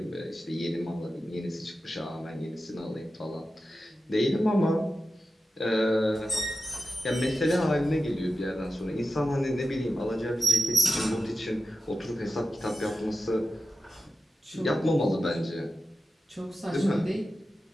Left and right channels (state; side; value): normal; both; correlation 0.92